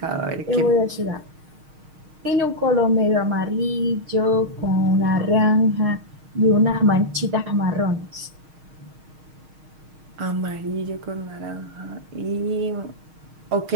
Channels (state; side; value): late; left; 6.4 ms